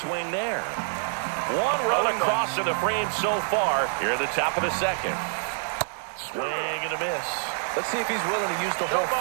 there. One run across in the frame so far here at the top of the second. Swing and a miss. Let's see if he's willing to use the whole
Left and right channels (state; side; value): silent; left; digital silence